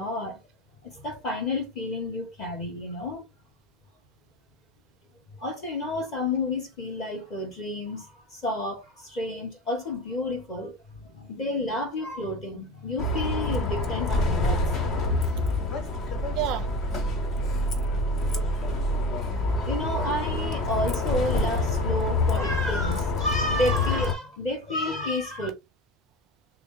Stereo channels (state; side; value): normal; both; correlation 0.31